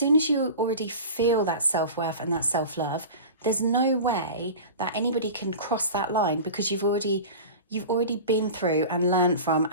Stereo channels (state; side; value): inverted; both; correlation -0.33